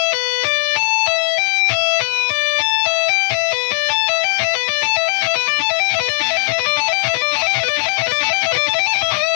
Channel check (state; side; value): silent; right; 59 dB below the other